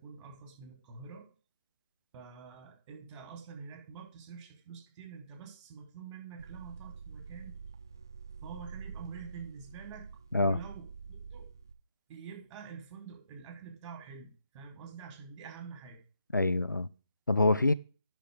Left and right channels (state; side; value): inverted; both; correlation -0.78